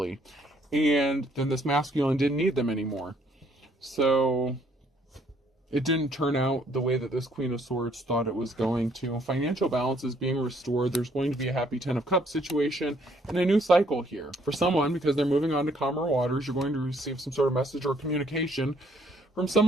and then this masculine didn't need them anymore. So it didn't turn out the way that this Queen of Swords thought it was going to. Financial balance is being restored. There's going to be a happy Ten of Cups situation and a new cycle here. For someone, because they're moving on to calmer waters, you're going to receive some sort of message or communication from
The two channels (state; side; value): normal; both; correlation 0.66